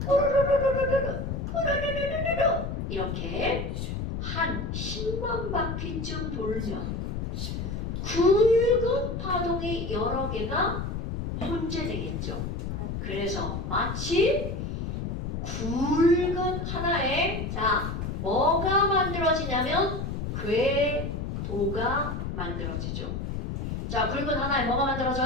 이렇게 한 10만 바퀴쯤 돌면 굵은 파동이 여러 개가 혼재되겠죠. 그래서 마치 굵은 하나의 뭐가 만들어지냐면 궤도가 만들어지죠. 자, 굵은 하나에 뭐가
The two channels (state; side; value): noise; left; rumble, 4 dB below the sound